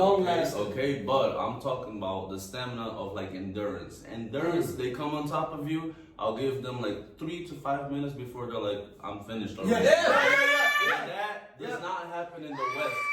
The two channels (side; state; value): both; identical; correlation 1.00